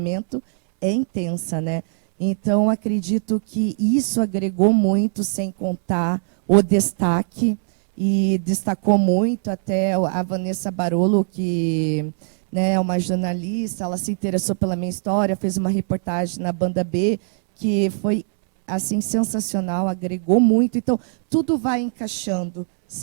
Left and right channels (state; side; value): silent; left; digital silence